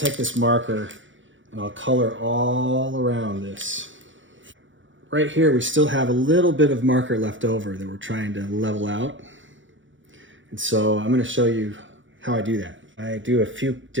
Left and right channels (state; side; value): late; left; 0.56 ms